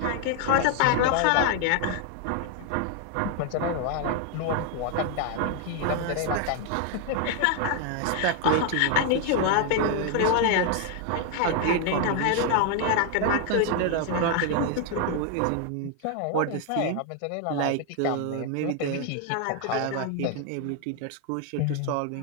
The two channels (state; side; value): different; both; correlation 0.00